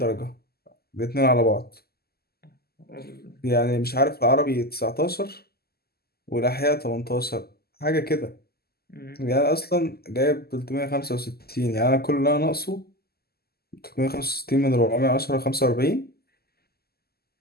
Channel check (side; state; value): right; late; 0.46 ms